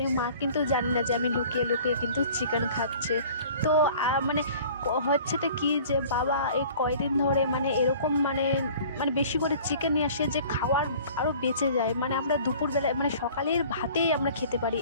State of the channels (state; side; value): inverted; both; correlation -0.47